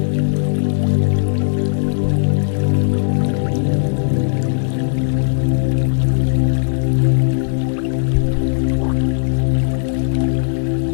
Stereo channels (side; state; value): right; silent; digital silence